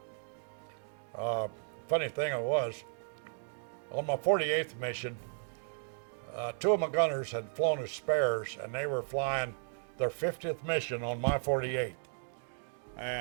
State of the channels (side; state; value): left; silent; digital silence